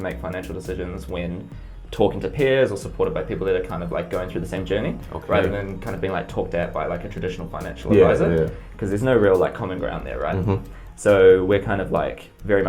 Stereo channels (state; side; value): identical; both; correlation 1.00